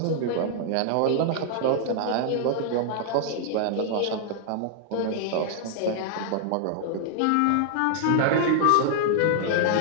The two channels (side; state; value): both; different; correlation -0.01